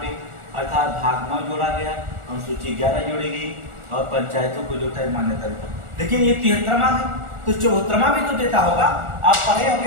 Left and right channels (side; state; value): left; late; 1.4 ms